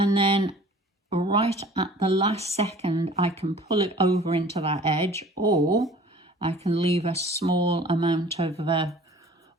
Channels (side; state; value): both; normal; correlation 0.48